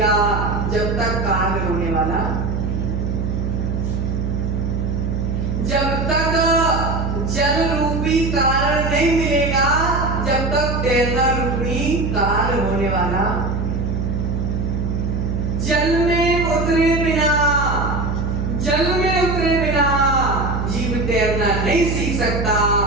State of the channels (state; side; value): noise; right; hum, 1 dB below the sound